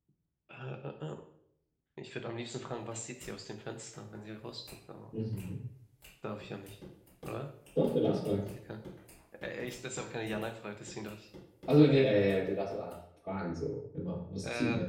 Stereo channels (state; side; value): identical; both; correlation 1.00